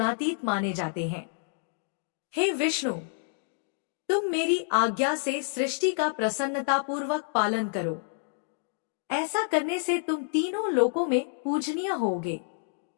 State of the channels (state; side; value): silent; right; digital silence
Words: माने जाते हैं। हे विष्णु, तुम मेरी आज्ञा से सृष्टि का प्रसन्नता पूर्वक पालन करो। ऐसा करने से तुम तीनों लोकों में पूजनीय होगे।